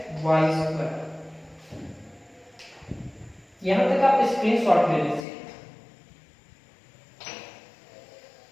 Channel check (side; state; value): right; drops out; at 5.2 s